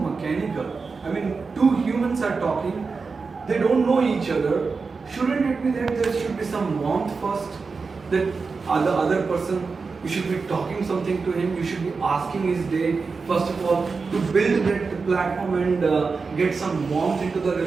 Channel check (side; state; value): left; quieter; 4.6 dB